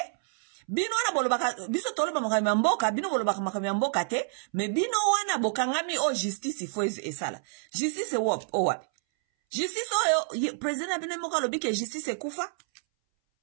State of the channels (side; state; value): left; silent; 59 dB below the other